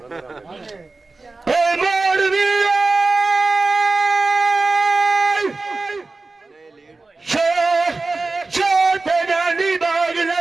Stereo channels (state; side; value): quieter; left; 3.6 dB